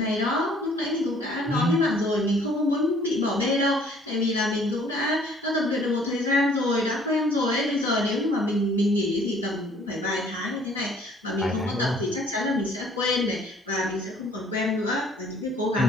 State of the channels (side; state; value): both; normal; correlation 0.57